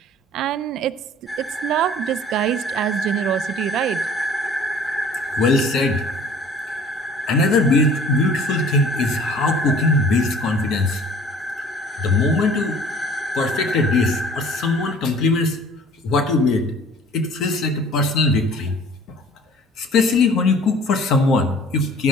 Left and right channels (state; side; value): normal; both; correlation 0.50